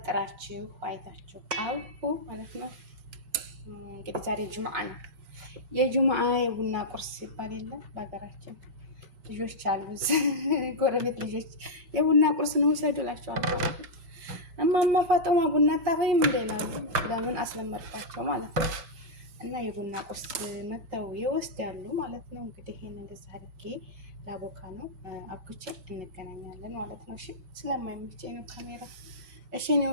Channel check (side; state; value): left; late; 4.7 ms